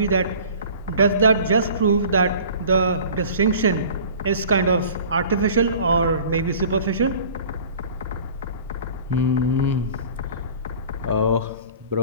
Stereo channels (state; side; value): inverted; both; correlation -0.45